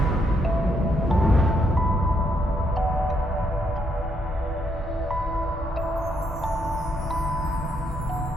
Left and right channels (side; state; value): both; normal; correlation 0.75